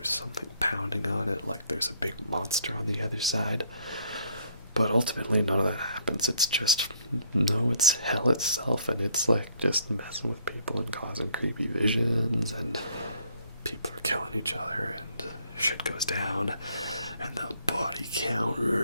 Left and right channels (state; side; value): inverted; both; correlation -0.64